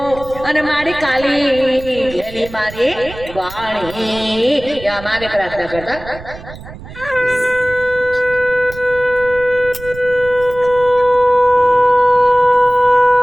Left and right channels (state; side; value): noise; right; rumble, 15 dB below the sound